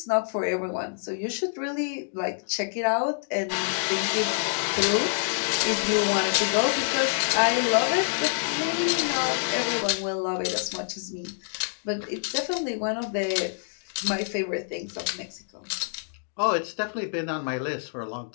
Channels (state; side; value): silent; right; digital silence